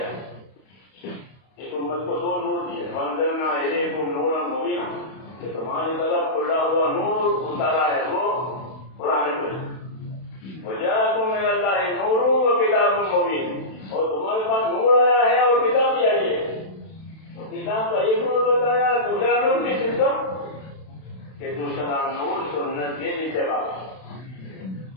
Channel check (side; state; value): right; late; 32 ms